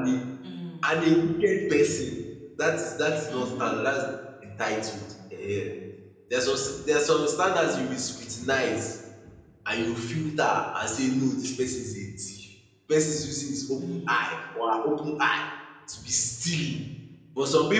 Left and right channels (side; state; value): both; identical; correlation 1.00